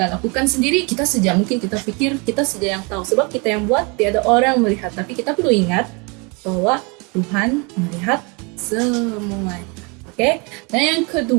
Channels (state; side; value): quieter; left; 30.9 dB